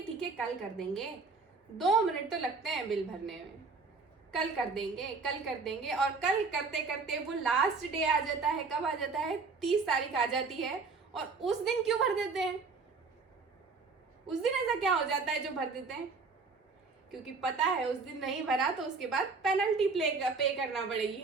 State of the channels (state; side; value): quieter; left; 4.4 dB